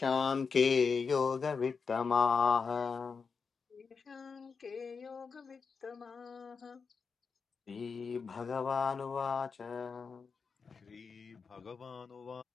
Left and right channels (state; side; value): quieter; right; 5.3 dB